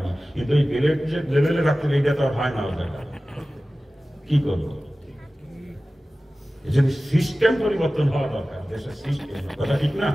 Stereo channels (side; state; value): both; normal; correlation 0.96